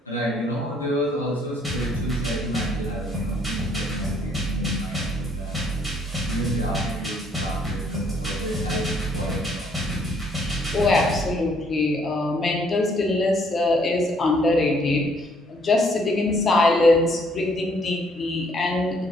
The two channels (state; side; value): normal; both; correlation 0.66